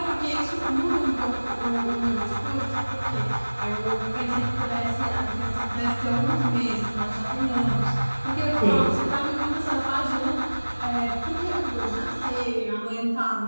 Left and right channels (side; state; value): both; inverted; correlation -1.00